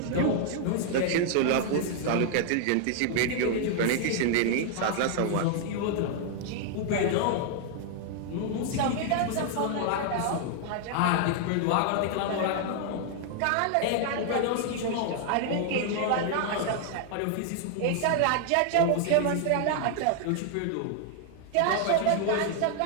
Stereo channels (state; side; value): different; both; correlation 0.00